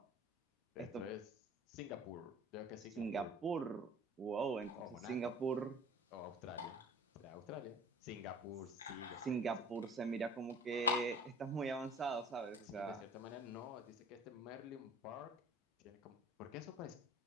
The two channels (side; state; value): both; normal; correlation 0.45